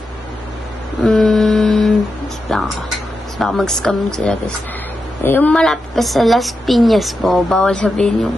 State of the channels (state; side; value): normal; both; correlation 0.88